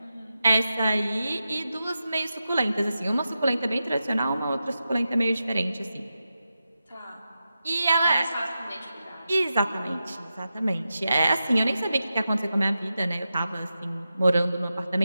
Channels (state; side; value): inverted; both; correlation -0.90